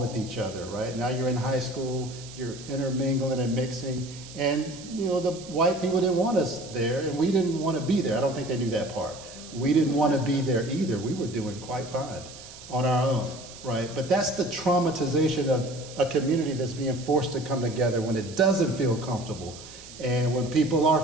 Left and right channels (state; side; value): noise; right; hiss, 16 dB below the sound